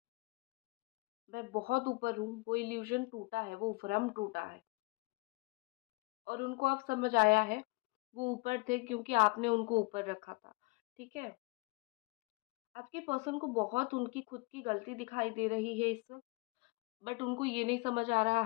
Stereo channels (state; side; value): quieter; right; 26.4 dB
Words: मैं बहुत ऊपर हूँ, वो इल्यूज़न टूटा है, वो भ्रम टूटा है और उनको अब समझ आया है, वो ऊपर थे क्योंकि आपने उनको ऊपर रखा था, ठीक है? आपके पर्सन को बहुत उनकी खुद की गलती दिखाई दे रही है इस वक़्त, बट उनको ये नहीं समझ आ रहा